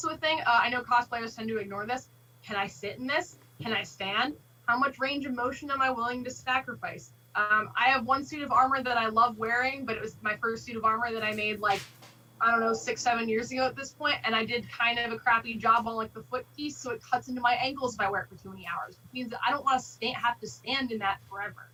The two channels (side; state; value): both; identical; correlation 1.00